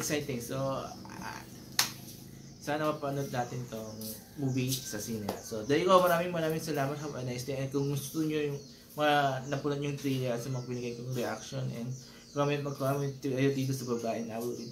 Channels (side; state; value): both; identical; correlation 1.00